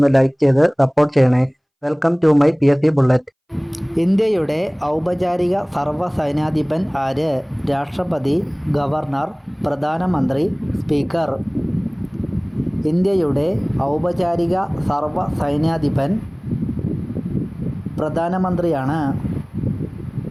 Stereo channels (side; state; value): both; identical; correlation 1.00